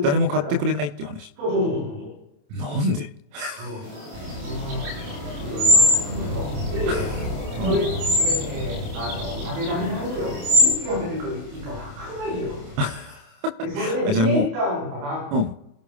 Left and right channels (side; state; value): left; late; 28 ms